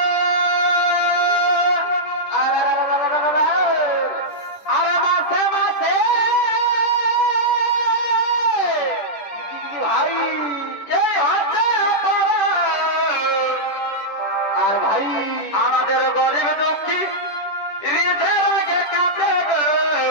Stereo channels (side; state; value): right; late; 10 ms